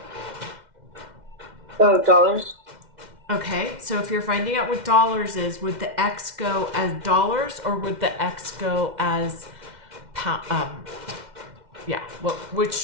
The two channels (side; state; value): left; late; 2.1 ms